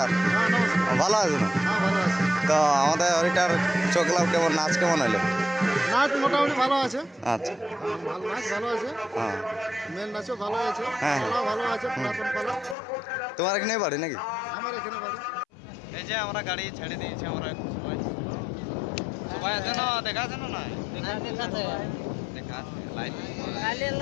ভালো আছে না? ভালো আছে। তো আমাদের হরিটার চোখলাম কেমন, নাচ কেমন হলো? নাচ মোটামুটি ভালো আছে। আচ্ছা, নাচ ভালো আছে। হ্যাঁ, মেন নাচও ভালো আছে। হ্যাঁ। পালা ভালো আছে। পুরাতন পালা। তোমার এখানে বাড়ি নাকি? আমার এখানে বাড়ি। এই যে আমরা গাড়ি ছেড়ে দিয়েছি, আমরা সবাই সবাই আছে না? দেখা আছে না? না দেখা আছে, light.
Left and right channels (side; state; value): right; drops out; at 12.8 s